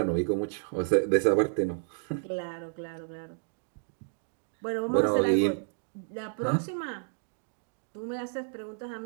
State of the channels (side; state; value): left; silent; digital silence